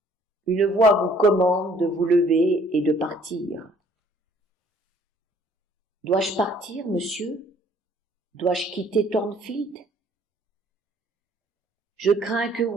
une voix vous commande de vous lever et de partir. Dois-je partir, monsieur? Dois-je quitter Thornfield? Je crains que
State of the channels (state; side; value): normal; both; correlation 0.59